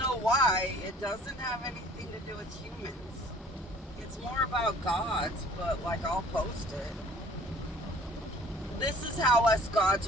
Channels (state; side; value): normal; both; correlation 0.52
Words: why. It doesn't have anything to do with humans. It's more about gods, but like I'll post it. This is how us gods